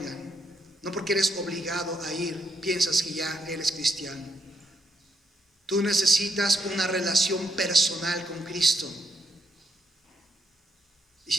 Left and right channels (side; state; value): both; normal; correlation 0.78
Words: no porque eres obligado a ir, piensas que ya eres cristiano. Tú necesitas una relación personal con Cristo. Y